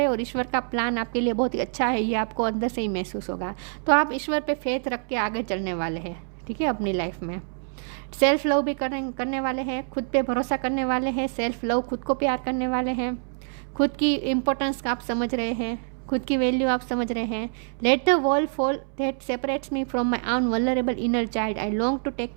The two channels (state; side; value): silent; left; 61 dB below the other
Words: हैं, और ईश्वर का प्लान आपके लिए बहुत ही अच्छा है, ये आपको अंदर से ही महसूस होगा। तो आप ईश्वर पे फेथ रख के आगे चलने वाले हैं। ठीक है, अपनी लाइफ में सेल्फ लव भी करने वाले हैं, खुद पे भरोसा करने वाले हैं, सेल्फ लव, खुद को प्यार करने वाले हैं, खुद की इम्पोर्टेंस आप समझ रहे हैं, खुद की वैल्यू आप समझ रहे हैं। Let the wall fall that separates me from my own vulnerable inner child, I long to take